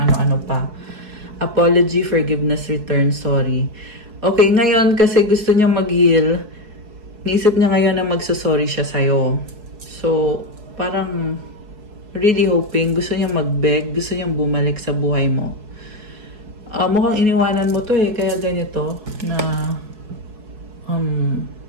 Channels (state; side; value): late; left; 4.7 ms